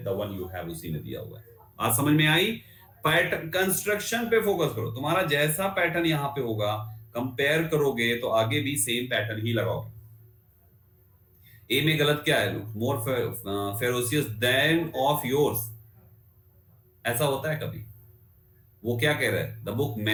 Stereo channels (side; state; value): both; identical; correlation 1.00